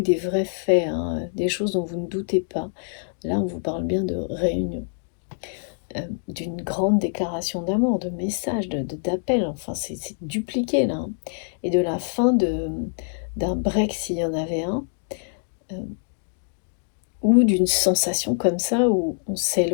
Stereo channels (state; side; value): silent; right; digital silence